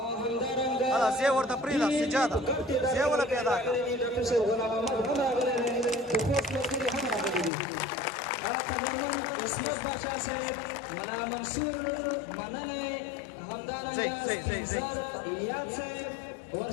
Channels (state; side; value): drops out; right; at 7.5 s